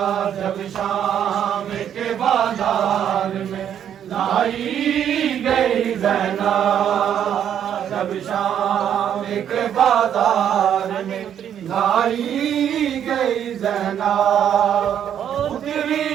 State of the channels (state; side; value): quieter; left; 9.4 dB